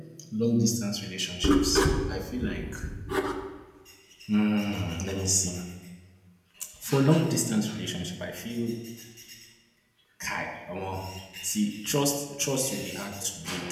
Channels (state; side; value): identical; both; correlation 1.00